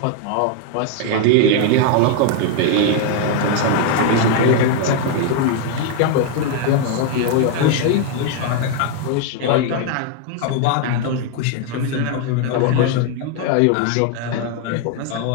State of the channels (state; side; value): different; both; correlation 0.00